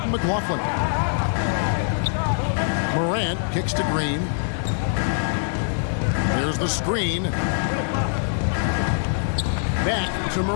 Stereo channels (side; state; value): right; silent; digital silence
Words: McLaughlin. Morant kicks to Green. There's the screen. Back to